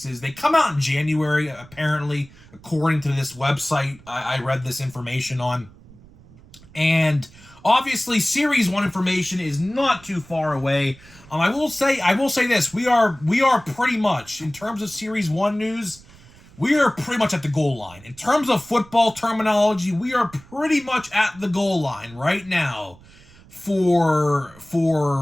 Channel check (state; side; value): noise; right; rumble, 24 dB below the sound